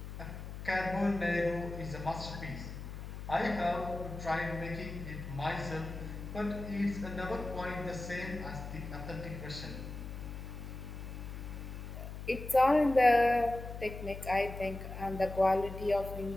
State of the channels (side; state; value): left; noise; hum, 9 dB below the sound